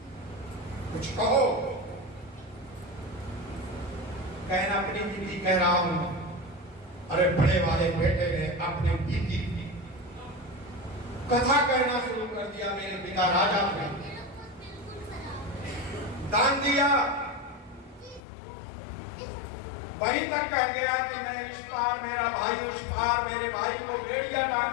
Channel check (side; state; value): right; drops out; at 18.2 s